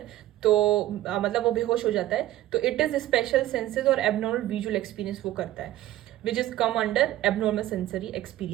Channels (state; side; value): quieter; left; 14.6 dB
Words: तो मतलब वो बेहोश हो जाता है। तो इट इज स्पेशल सेंसेस और एबनॉर्मल विजुअल एक्सपीरियंस वो करता है, which is come under abnormal sensory